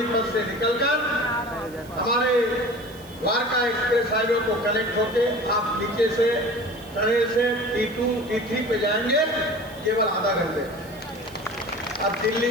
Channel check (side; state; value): right; noise; hiss, 23 dB below the sound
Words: से निकलकर हमारे द्वारका एक्सप्रेस हाईवे को कनेक्ट होके आप नीचे से टनल से T2 T3 पे जाएंगे केवल आधा घंटे। अब दिल्ली